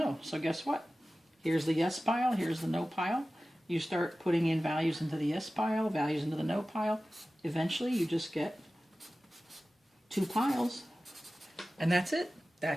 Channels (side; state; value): both; normal; correlation 0.96